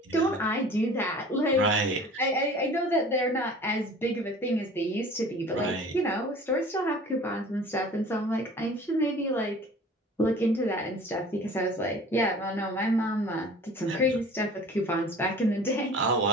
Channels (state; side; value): normal; both; correlation 0.45